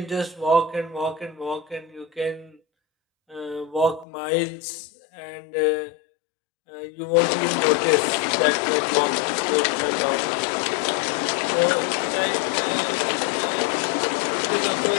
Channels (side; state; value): right; drops out; at 4.0 s